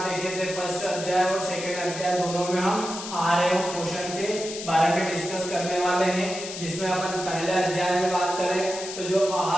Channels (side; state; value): left; noise; hiss, 9 dB below the sound